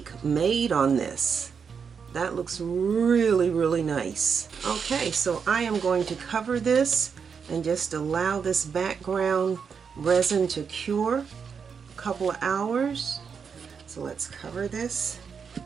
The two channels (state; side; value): quieter; left; 6.3 dB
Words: made on this. That looks really, really nice. Okay, so I am going to cover this and just allow this background resin to cure a couple of hours. So let's cover this,